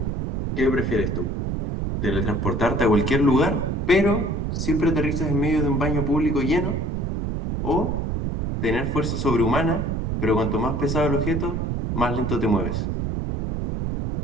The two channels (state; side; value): noise; right; rumble, 1 dB below the sound